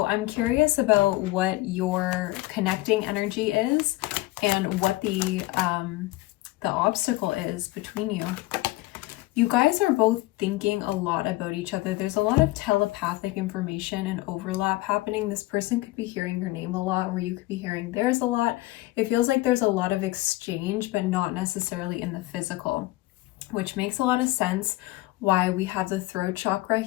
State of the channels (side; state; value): right; quieter; 18.8 dB